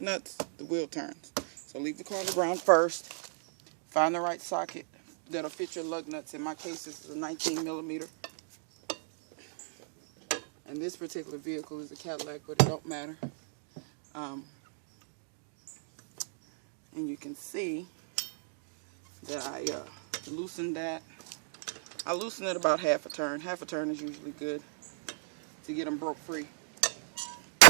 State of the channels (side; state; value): left; silent; digital silence